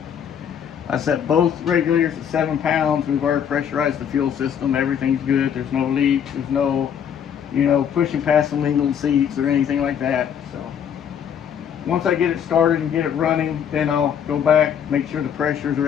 I set both regulators at 7 pounds. We've already pressurized the fuel system. Everything's good. There's no leaks. There's no, pushing past some legal seats or anything like that. So once I get it started and get it running, then I'll go back, make sure the pressures or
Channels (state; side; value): quieter; right; 8.4 dB